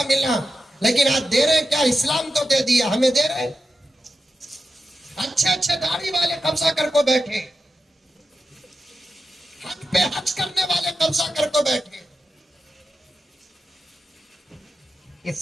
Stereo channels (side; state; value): both; normal; correlation 0.91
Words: ملنا، لیکن آج دے رہے ہیں کیا؟ اسلام تو دے دیا، ہمیں دے رہے ہیں۔ اچھے داڑھی والے قبضہ کر کو بیٹھے، حج پہ حج کرنے والے قبضہ کر کو بیٹھے۔